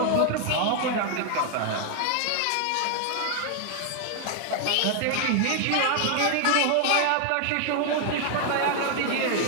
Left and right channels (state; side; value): different; both; correlation 0.00